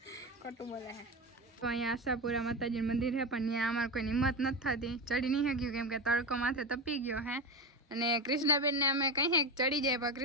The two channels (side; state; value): both; normal; correlation 0.20